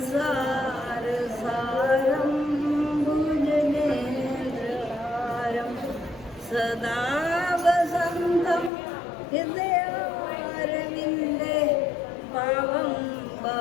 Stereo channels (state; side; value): drops out; right; at 8.7 s